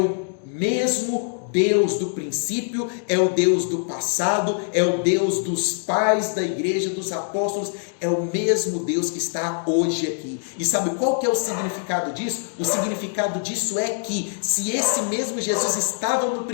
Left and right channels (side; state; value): right; silent; 63 dB below the other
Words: mesmo Deus do princípio, é o Deus do passado, é o Deus dos pais da igreja, dos apóstolos, é o mesmo Deus que está hoje aqui. E sabe qual que é o significado disso? O significado disso é que, se esse mesmo Jesus estava no